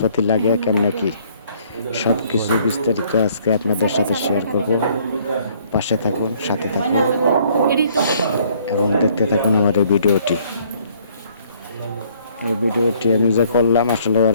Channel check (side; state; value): both; inverted; correlation -0.62